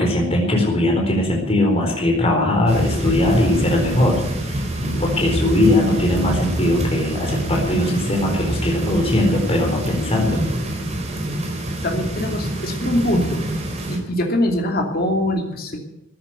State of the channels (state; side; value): normal; both; correlation 0.62